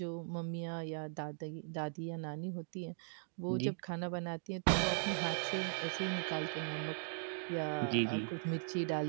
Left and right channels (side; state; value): left; silent; digital silence